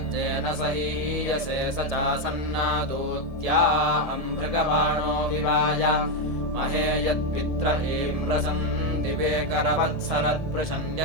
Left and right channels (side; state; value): left; late; 1.7 ms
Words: सहीयसे स चासन्नादूत्या अम्भृगबाणो विवाय महे यत्पित्र इम्रसन् दिवे